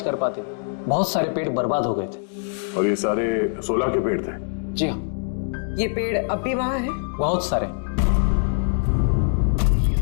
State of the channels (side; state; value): right; silent; 63 dB below the other